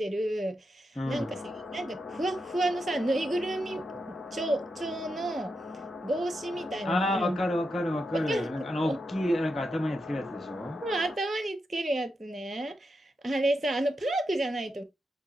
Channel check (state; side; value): normal; both; correlation 0.86